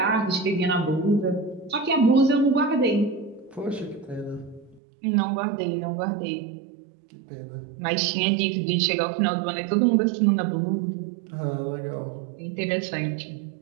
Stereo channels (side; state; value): left; drops out; at 4.8 s